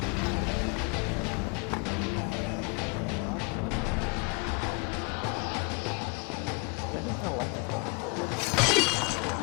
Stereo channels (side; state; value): right; quieter; 32.3 dB